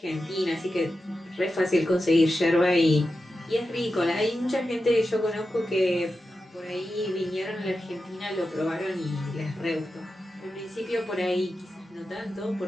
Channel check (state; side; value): normal; both; correlation 0.91